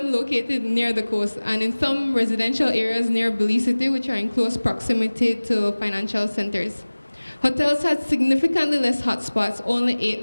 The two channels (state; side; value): inverted; both; correlation -1.00